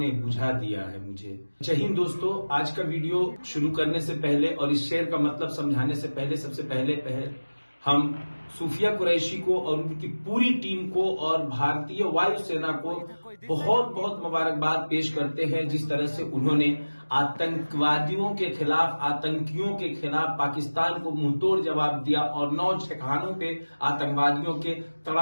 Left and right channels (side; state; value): both; inverted; correlation -1.00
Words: बुझा दिया है मुझे। जय हिंद दोस्तों, आज का वीडियो शुरू करने से पहले और इस शेर का मतलब समझाने से पहले सबसे पहले हम सूफिया कुरैशी को और उनकी पूरी टीम को और भारतीय वायुसेना को बहुत बहुत मुबारकबाद पेश करते हैं। जिस तरह से उन्होंने आतंकवादियों के खिलाफ, आतंकियों के खिलाफ पाकिस्तान को मुंहतोड़ जवाब दिया और 9 ठिकानों पे आतंकवादियों के